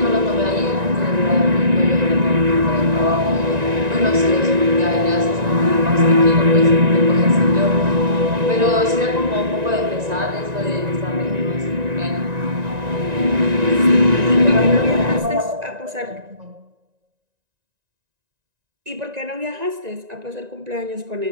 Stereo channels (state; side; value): late; left; 1.9 ms